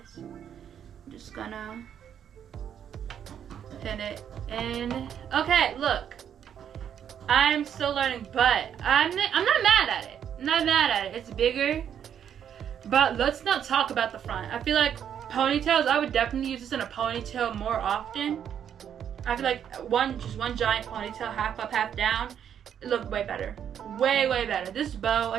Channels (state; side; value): quieter; left; 8.9 dB